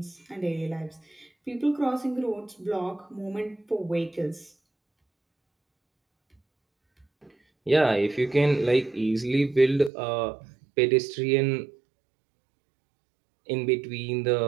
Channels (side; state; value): left; drops out; at 9.9 s